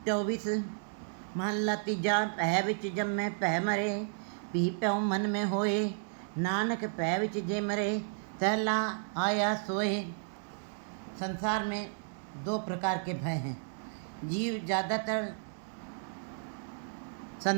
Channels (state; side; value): silent; left; digital silence